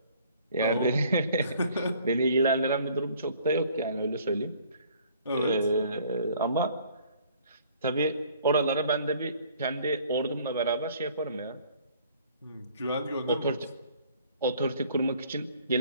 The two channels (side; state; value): both; inverted; correlation -0.57